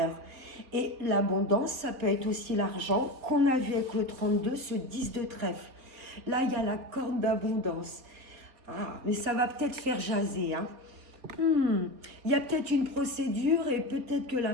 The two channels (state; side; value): late; left; 3.9 ms